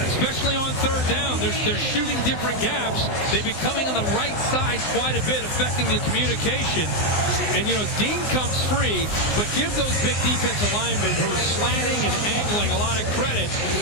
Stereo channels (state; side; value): late; right; 19 ms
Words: especially on 3rd down, they're shooting different gaps. They've been coming on the right side quite a bit, affecting the communication. And, you know, Dean comes free, but give those big defensive linemen who are slanting and angling a lot of credit